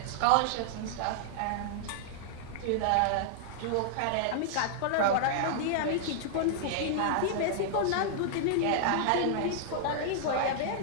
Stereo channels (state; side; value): different; both; correlation -0.01